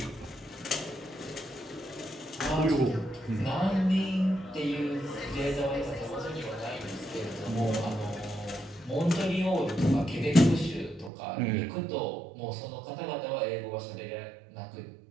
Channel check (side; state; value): left; drops out; at 11.1 s